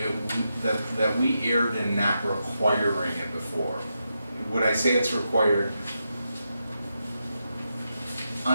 we erred in not requiring it before. Would I say it's required?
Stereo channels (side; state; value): both; inverted; correlation -0.86